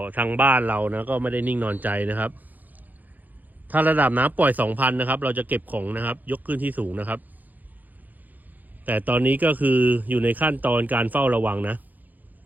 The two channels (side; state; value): left; late; 0.083 ms